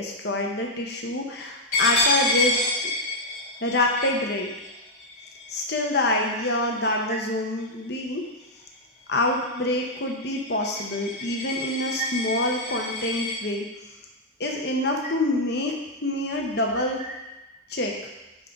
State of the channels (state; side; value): normal; both; correlation -0.02